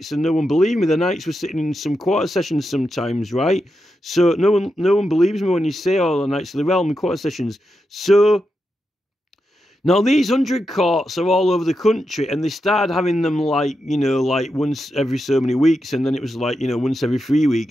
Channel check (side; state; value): both; normal; correlation 0.87